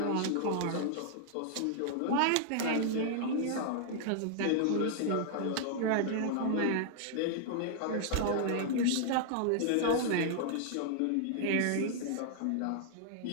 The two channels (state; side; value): different; both; correlation -0.01